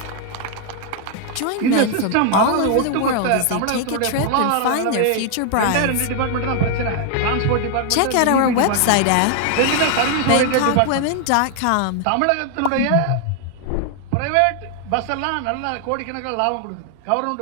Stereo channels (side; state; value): both; different; correlation 0.00